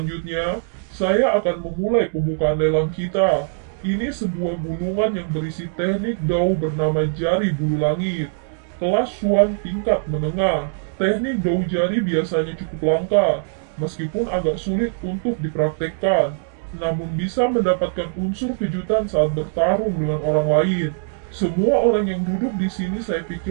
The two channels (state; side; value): silent; left; digital silence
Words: saya akan memulai pembukaan lelang kita. Ini sebuah gulungan yang berisi teknik Dao bernama jari bulu langit. Kelas Xuan tingkat menengah. Teknik Dao jari biasanya cukup langka, meskipun agak sulit untuk dipraktekkan. Namun bisa mendapatkan unsur kejutan saat bertarung dengan orang lain. Semua orang yang duduk di sini saya